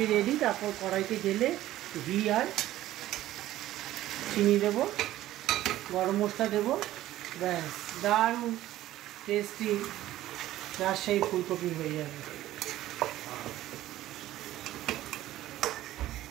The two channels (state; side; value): quieter; left; 14.5 dB